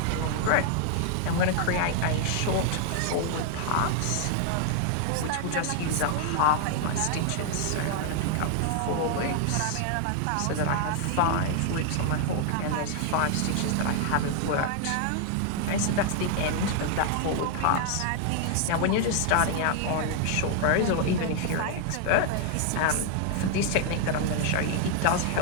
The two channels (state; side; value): different; both; correlation 0.00